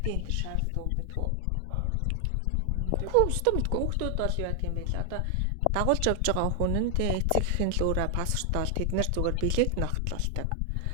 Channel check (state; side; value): different; both; correlation 0.00